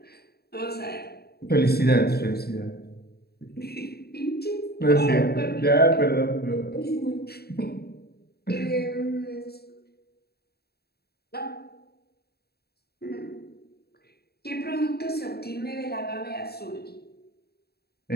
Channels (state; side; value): late; right; 0.46 ms